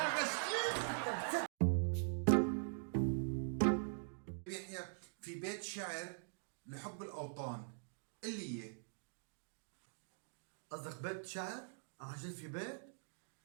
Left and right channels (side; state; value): left; silent; digital silence